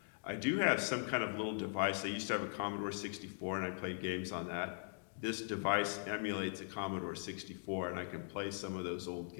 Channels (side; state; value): right; silent; digital silence